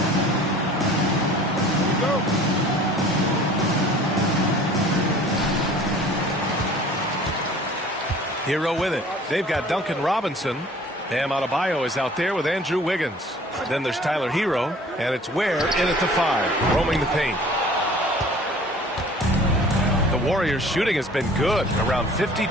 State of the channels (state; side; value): normal; both; correlation 0.49